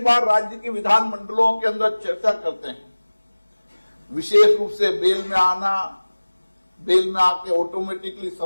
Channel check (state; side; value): inverted; both; correlation -1.00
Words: राज्य के विधान मंडलों के अंदर चर्चा करते हैं। विशेष रूप से बेल में आना, बेल में आके ऑटोमेटिकली